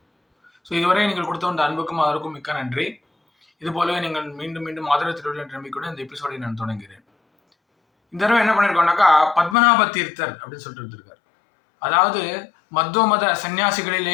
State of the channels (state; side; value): drops out; right; at 9.6 s